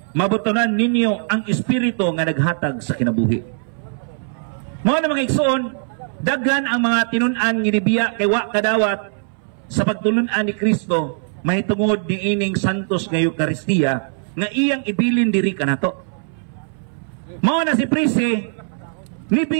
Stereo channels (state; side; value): silent; left; 63 dB below the other